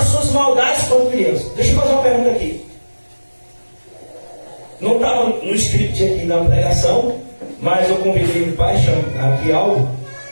suas maldades quando criança. Deixa eu fazer uma pergunta aqui. Não estava no script aqui na pregação, mas eu convidei o pai, chama aqui algo,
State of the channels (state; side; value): inverted; both; correlation -1.00